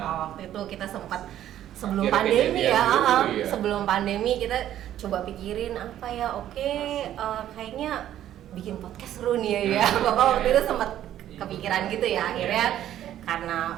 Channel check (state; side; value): quieter; left; 11.8 dB